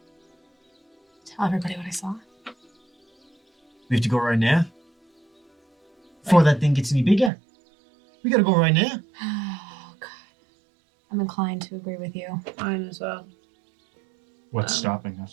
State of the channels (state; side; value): drops out; left; at 7.3 s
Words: Tell everybody what I saw. We have to go right now? Before that thing gets any bigger. We gotta go right now. Oh, God. I'm inclined to agree with you. Mine as well. What's stopping